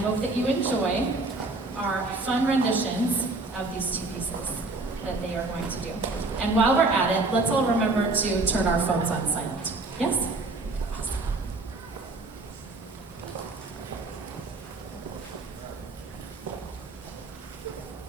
that you enjoy our fun renditions of these two pieces. that they are going to do. And while we're at it, let's all remember to turn our phones on silent. Yes? Awesome.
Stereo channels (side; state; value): left; quieter; 3.3 dB